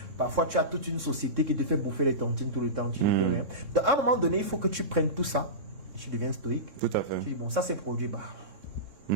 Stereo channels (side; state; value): left; late; 3.6 ms